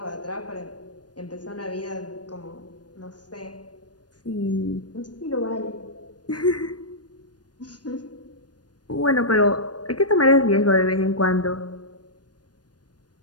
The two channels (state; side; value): late; right; 0.69 ms